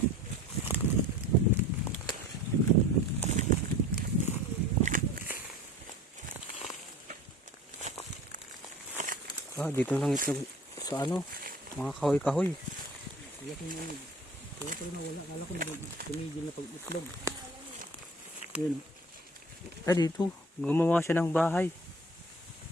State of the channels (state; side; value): normal; both; correlation 0.43